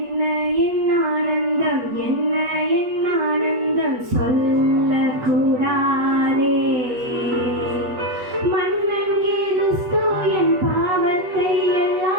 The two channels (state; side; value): late; left; 8.2 ms